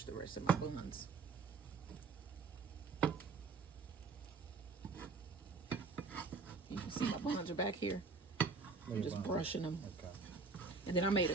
the rest of my buns. You can see my buns are back here. I'm just brushing them. Okay. And then I made a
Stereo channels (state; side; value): quieter; left; 4.4 dB